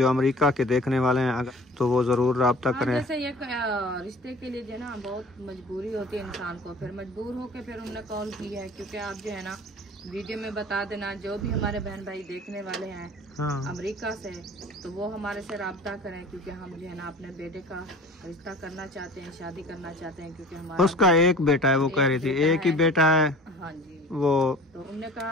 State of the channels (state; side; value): normal; both; correlation 0.44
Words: अमेरिका के देखने वाले हैं अगर तो वो ज़रूर रब्ता करें। जैसे ये रिश्ते के लिए जो है ना बहुत मजबूरी होती है इंसान को, फिर मजबूर होकर फिर उन्होंने कॉल की है। क्योंकि आप जो है ना वीडियो में बता देना, जो भी हमारे बहन भाई देखने वाले हैं अमेरिका से, तो वो हमारे से रब्ता करें, क्योंकि हम जो है ना अपने बेटे का रिश्ता करना चाहते हैं, शादी करना चाहते हैं। क्योंकि हमारा उसका एक बेटा है, वो कह रही थी एक ही बेटा है। हाँ जी, वो तो उन्होंने